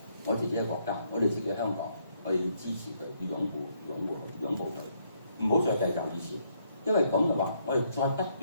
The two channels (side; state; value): both; inverted; correlation -0.72